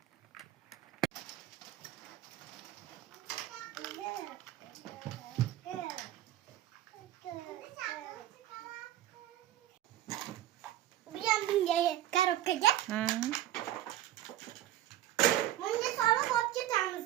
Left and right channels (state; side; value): quieter; left; 13.4 dB